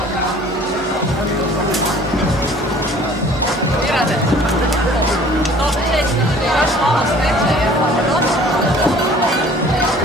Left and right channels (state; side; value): normal; both; correlation 0.51